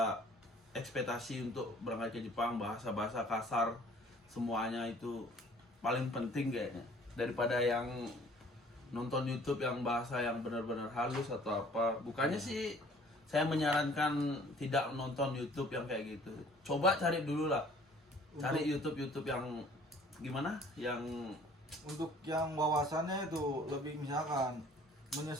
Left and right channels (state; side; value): normal; both; correlation 0.53